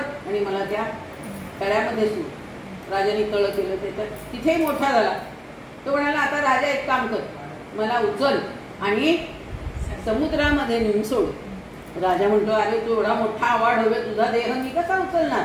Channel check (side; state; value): both; identical; correlation 1.00